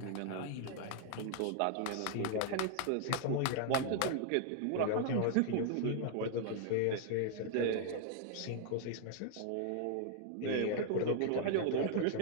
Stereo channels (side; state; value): both; different; correlation 0.00